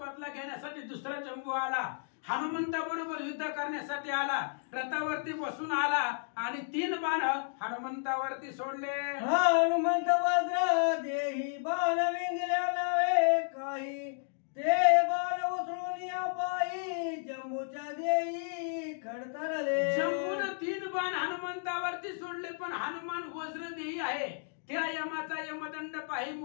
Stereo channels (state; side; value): silent; right; digital silence